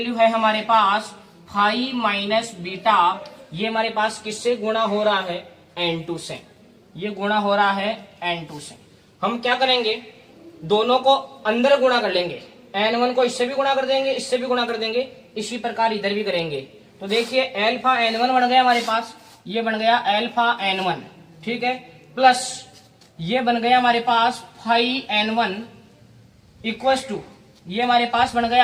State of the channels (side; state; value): both; identical; correlation 1.00